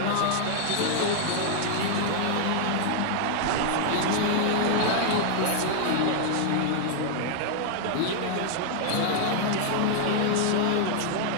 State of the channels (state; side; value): different; both; correlation -0.01